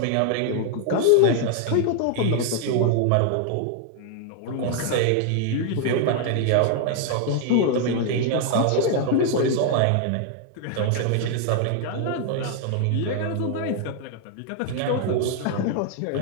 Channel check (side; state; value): both; different; correlation 0.00